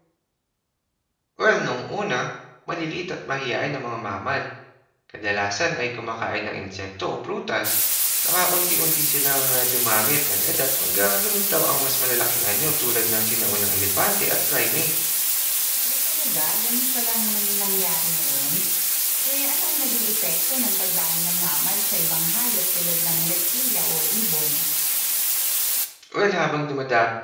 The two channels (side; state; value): both; identical; correlation 1.00